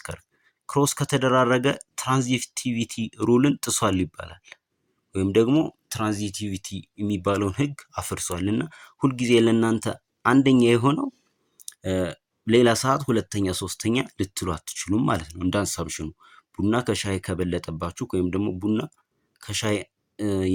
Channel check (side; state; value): both; identical; correlation 1.00